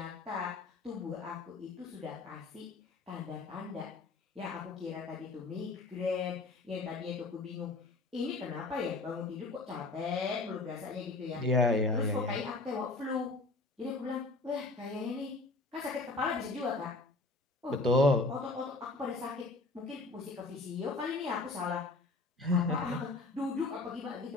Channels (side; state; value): right; quieter; 3.3 dB